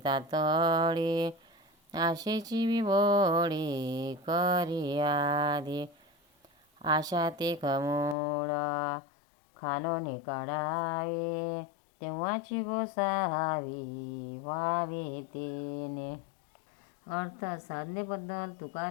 तातडी, आशेची विभोडी करी आधी. आशा ते कमूळ खानोनी काढावे, तेव्हाची गोसावी व्हावे तेने. अर्थ साधनेबद्दल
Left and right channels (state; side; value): drops out; right; at 8.2 s